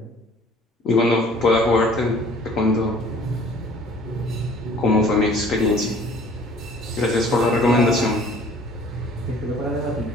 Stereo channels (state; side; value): normal; both; correlation 0.53